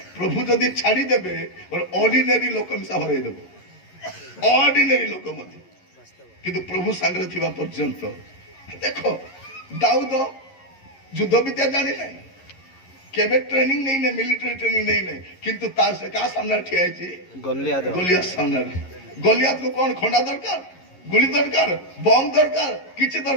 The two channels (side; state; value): right; late; 11 ms